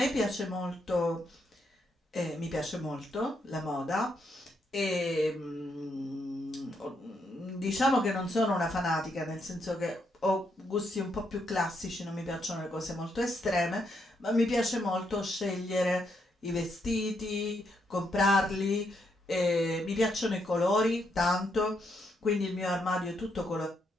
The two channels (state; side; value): normal; both; correlation 0.78